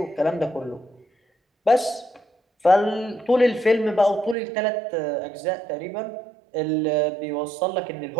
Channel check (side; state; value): left; drops out; at 4.4 s